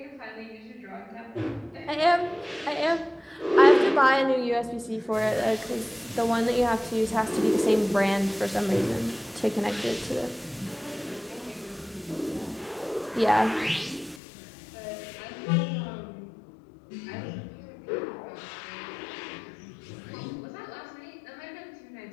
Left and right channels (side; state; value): right; drops out; at 14.2 s